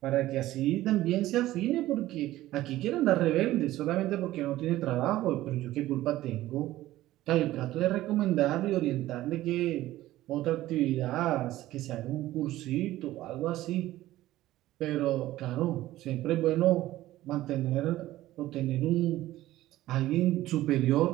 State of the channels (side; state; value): left; quieter; 15.5 dB